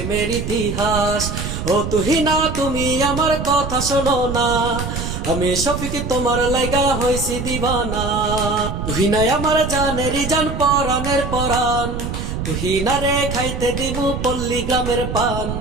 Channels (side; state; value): right; noise; rumble, 5 dB below the sound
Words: ইতিহাস। ও তুহিনা তুমি আমার কথা শোনো না, আমি শফিক তোমার লাইগা হইছি দিবানা। তুহিনাই আমার জানেরই জান, পরাণের পরাণ, তুহিনারে খাইতে দিবু পল্লী গ্রামের পান।